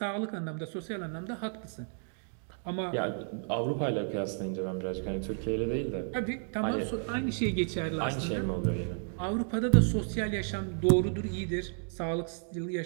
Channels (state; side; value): silent; left; 56 dB below the other